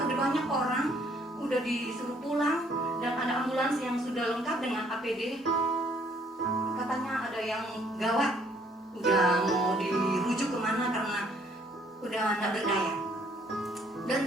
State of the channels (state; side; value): normal; both; correlation 0.63